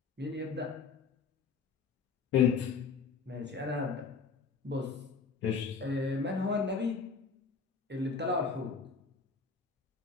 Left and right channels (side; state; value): right; quieter; 5.2 dB